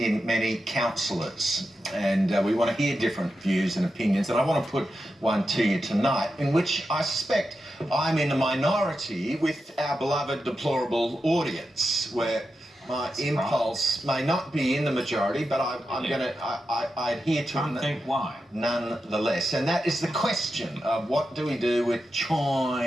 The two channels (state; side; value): normal; both; correlation 0.89